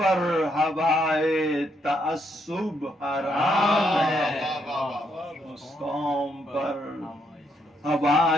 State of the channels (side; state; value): both; normal; correlation 0.75